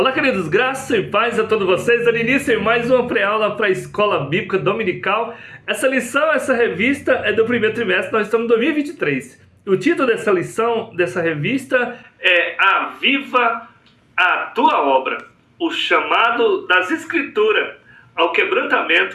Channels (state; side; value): identical; both; correlation 1.00